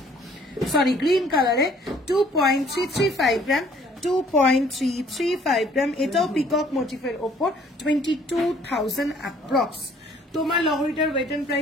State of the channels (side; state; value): both; normal; correlation 0.59